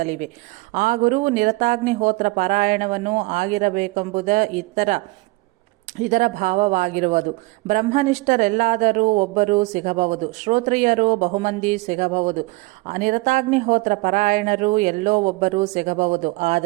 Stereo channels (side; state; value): left; quieter; 23.2 dB